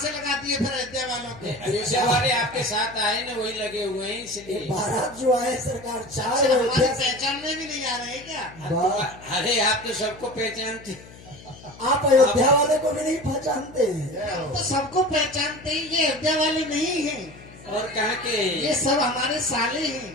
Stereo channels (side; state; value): left; noise; hum, 20 dB below the sound